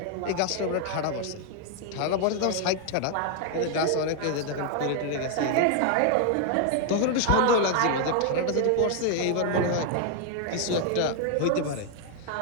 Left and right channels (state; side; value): different; both; correlation 0.00